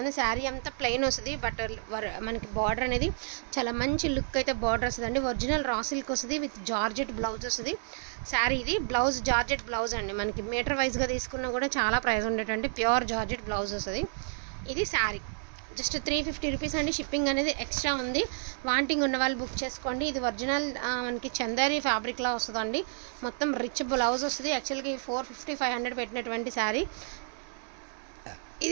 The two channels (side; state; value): left; silent; 57 dB below the other